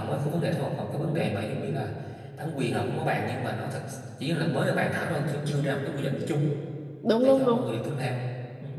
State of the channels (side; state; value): both; identical; correlation 1.00